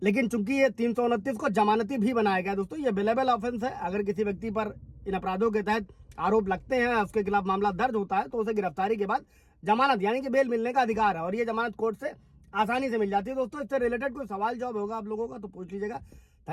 लेकिन चूंकि ये 329 को जमानती भी बनाया गया दोस्तों, ये बेलेबल ऑफेंस है। अगर किसी व्यक्ति पर इन अपराधों के तहत आरोप लगते हैं, उसके खिलाफ मामला दर्ज होता है, तो उसे गिरफ्तारी के बाद जमानत यानी कि बेल मिलने का अधिकार है, और ये जमानत कोर्ट से आसानी से मिल जाती है दोस्तों। इससे रिलेटेड कोई सवाल जवाब होगा आप लोगों का तो पूछ लीजिएगा।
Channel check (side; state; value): both; identical; correlation 1.00